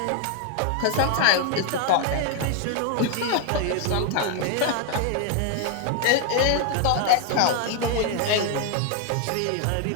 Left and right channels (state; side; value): different; both; correlation 0.01